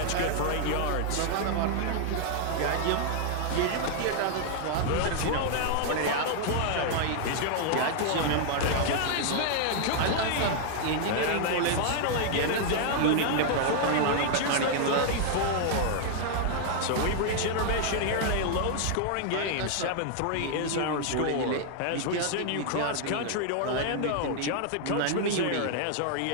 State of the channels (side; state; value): both; different; correlation 0.00